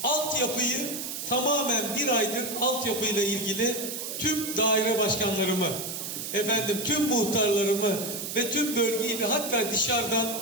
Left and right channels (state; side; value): noise; right; hiss, 6 dB below the sound